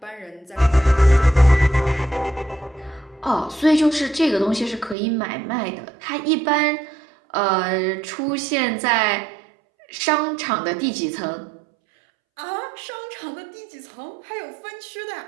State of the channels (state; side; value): drops out; left; at 5.0 s